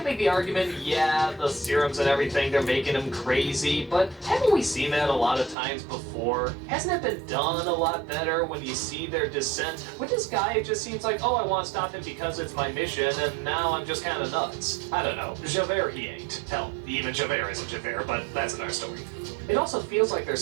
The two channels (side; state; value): left; drops out; at 5.6 s